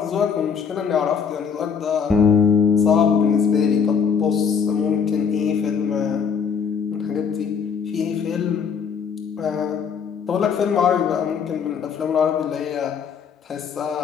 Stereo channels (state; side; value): quieter; right; 6.5 dB